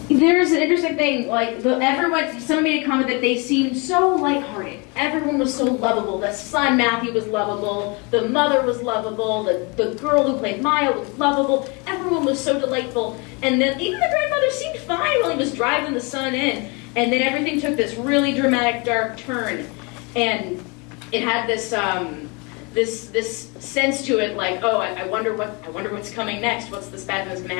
There's an interesting thing. Like someone made a comment that they seemed so lighthearted. Everyone was so lovable. The son Matthew was lovable. The mother was lovable. The girl who played Maya was lovable. Everyone was so delightful. And then even the grandmother seemed fine while he was driving the son in. And then everything took this really dramatic, dark turn, and it had this. This sense to it, like, oh, I wonder what's coming next. What's this bad thing that's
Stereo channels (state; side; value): quieter; right; 30.0 dB